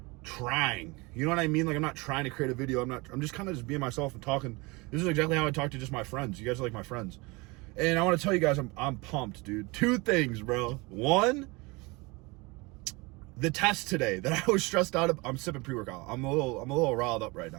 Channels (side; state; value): left; quieter; 25.5 dB